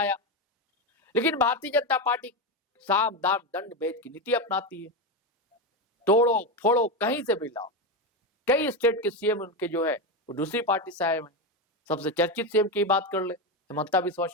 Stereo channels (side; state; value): both; normal; correlation 0.13